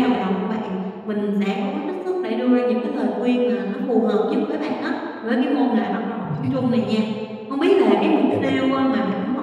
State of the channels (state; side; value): identical; both; correlation 1.00